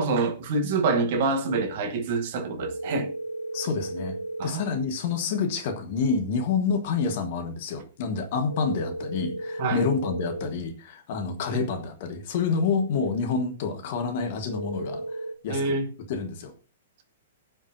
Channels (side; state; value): both; inverted; correlation -0.32